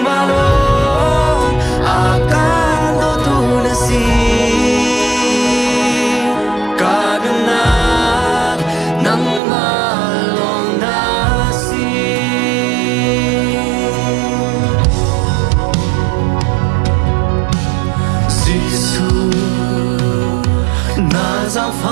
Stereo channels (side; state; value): left; drops out; at 9.4 s